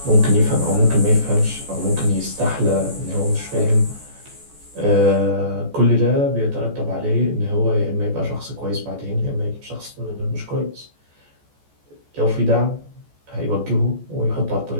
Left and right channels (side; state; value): left; late; 14 ms